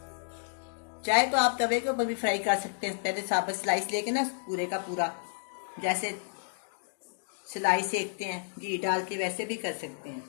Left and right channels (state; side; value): silent; right; digital silence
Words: चाहे तो आप तवे के ऊपर भी फ्राई कर सकते हैं। पहले साबुत स्लाइस लेके ना पूरे का पूरा, जैसे स्लाइस सेकते हैं घी डाल के, वैसे भी कर सकते हैं।